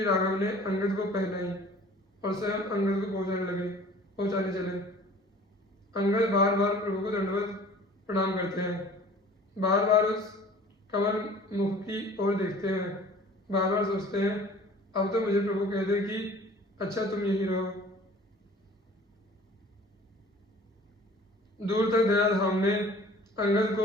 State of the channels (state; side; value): normal; both; correlation 0.48